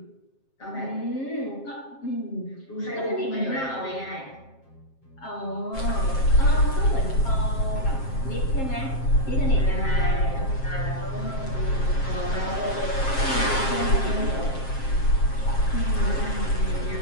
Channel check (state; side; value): late; right; 7.5 ms